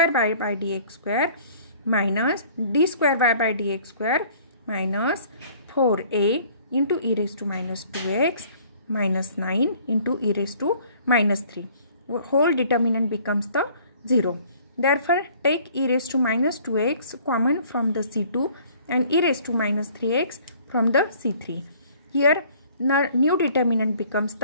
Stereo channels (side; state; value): both; inverted; correlation -0.55